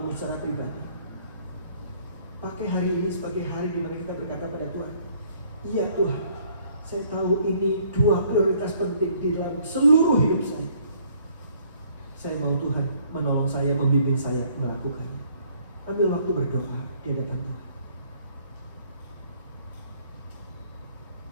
secara pribadi. Pakai hari ini sebagai hari di mana kita berkata pada Tuhan, iya Tuhan, saya tahu ini dua prioritas penting di dalam seluruh hidup saya. Saya mau Tuhan menolong saya, membimbing saya melakukannya. Ambil waktu berdoa di hadapan Tuhan.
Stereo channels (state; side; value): inverted; both; correlation -0.62